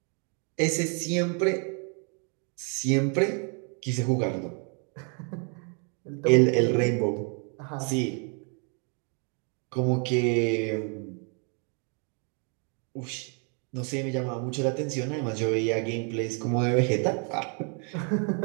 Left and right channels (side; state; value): left; quieter; 39.6 dB